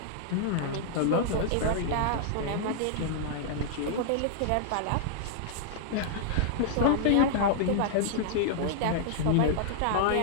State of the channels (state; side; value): different; both; correlation -0.01